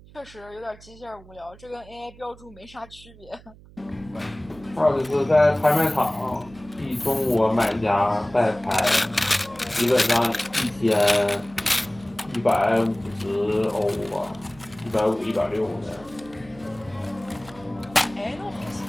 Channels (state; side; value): noise; right; hum, 22 dB below the sound